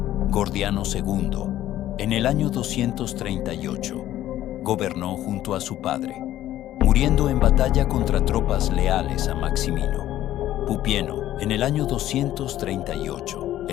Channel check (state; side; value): quieter; right; 13.3 dB